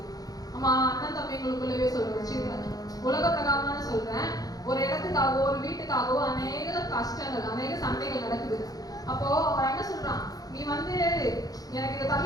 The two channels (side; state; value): right; late; 0.18 ms